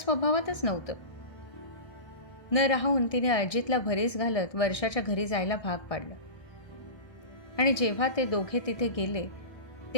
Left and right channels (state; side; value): late; right; 1.6 ms